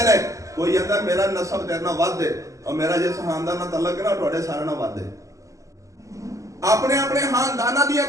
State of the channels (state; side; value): late; left; 0.16 ms